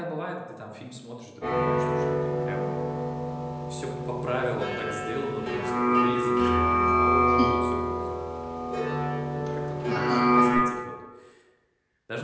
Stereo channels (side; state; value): both; identical; correlation 1.00